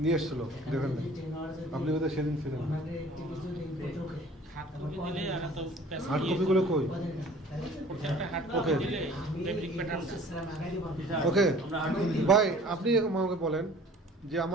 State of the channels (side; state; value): both; normal; correlation 0.49